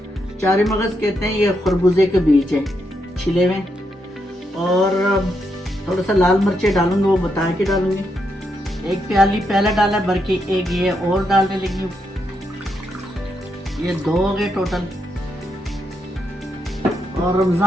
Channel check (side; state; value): both; normal; correlation 0.81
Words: चारी मगज कहते हैं ये खरबूजे के बीज है छिले हुए, और थोड़ा सा लाल मिर्चे डालूंगी, वो बता के डालूंगी। एक प्याली पहले डाला भर के, एक ये और डालने लगी हूँ, ये 2 हो गए टोटल। और